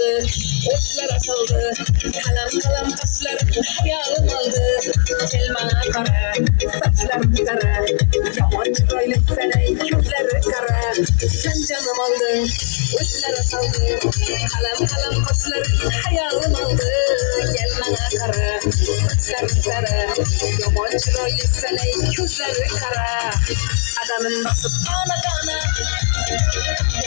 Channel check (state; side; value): silent; right; 64 dB below the other